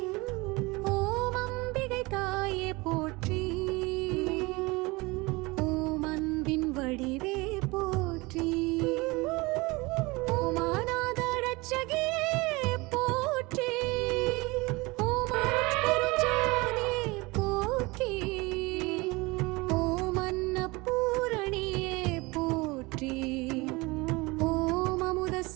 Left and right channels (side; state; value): left; quieter; 23.9 dB